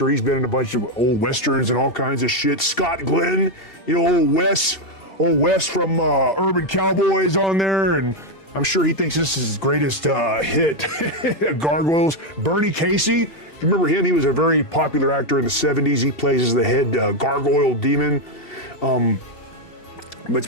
He's been in a bunch of old westerns and all kinds of shit. Scott Glenn, you know, old Wes from Urban Cowboys on there, and I'm sure he thinks this is his greatest hit. Gargoyles. Bernie Casey, you remember him? He was a very popular actor in the 70s. He plays as the head gargoyle demon. But it's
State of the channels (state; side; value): late; right; 2.7 ms